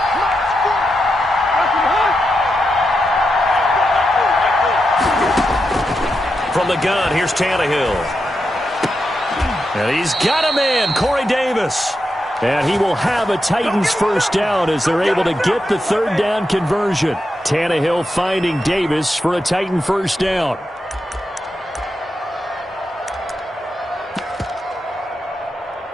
From the gun, here's Tannehill. And he's got a man, Corey Davis. And he will have a Titans first down as they're able to get the 3rd down conversion. Tannehill finding Davis for a Titan first down.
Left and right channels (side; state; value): both; normal; correlation 0.86